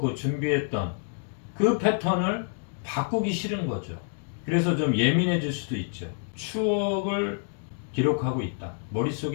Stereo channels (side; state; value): right; silent; 59 dB below the other